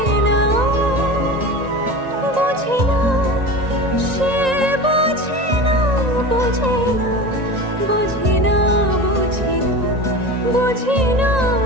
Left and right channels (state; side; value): late; left; 1.9 ms